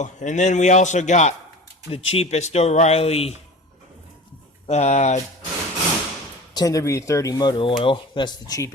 then we also got the cheapest O'Reilly 10W30 motor oil. That's the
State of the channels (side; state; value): both; normal; correlation 0.36